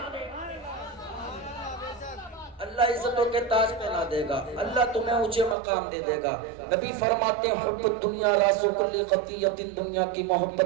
اللہ عزتوں کے تاج پہنا دے گا، اللہ تمہیں اونچے مقام دے دے گا۔ نبی فرماتے ہیں حب الدنیا راس کل خطیۃ، دنیا کی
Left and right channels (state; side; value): drops out; left; at 5.6 s